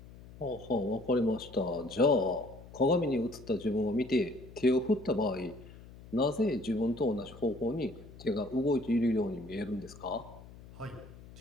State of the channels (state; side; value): noise; left; hum, 18 dB below the sound